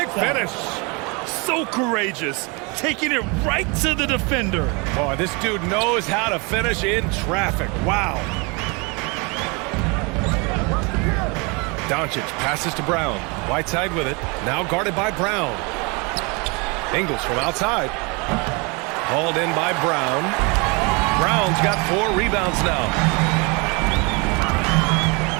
finish. So courageous, taking it right to the defender. Boy, this dude knows how to finish in traffic. Wow. Doncic passes to Brown. Whiteside with it. Now guarded by Brown. Ingles from outside. Hauled in by Brown. Brown's got 4 rebounds now.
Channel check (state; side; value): quieter; left; 29.8 dB